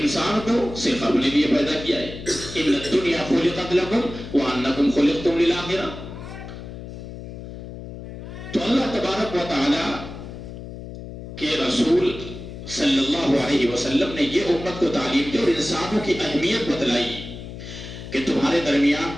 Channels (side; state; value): left; noise; hum, 11 dB below the sound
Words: کو صرف اپنے لیے پیدا کیا ہے. ان الدنیا خلقت لکم وانکم خلقتم للآخرہ. تو اللہ تبارک و تعالی کہ رسول صلی اللہ علیہ وسلم نے یہ امت کو تعلیم دی اور انسانوں کی اہمیت بتلائی کہ تمہارے درمیان